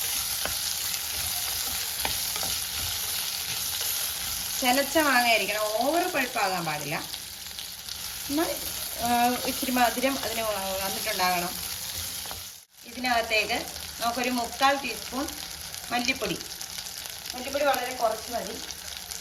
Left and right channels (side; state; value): both; identical; correlation 1.00